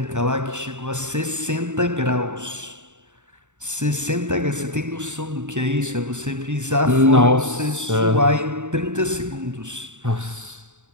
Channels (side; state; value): left; late; 0.84 ms